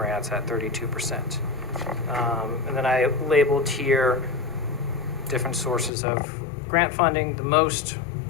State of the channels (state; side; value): drops out; right; at 5.9 s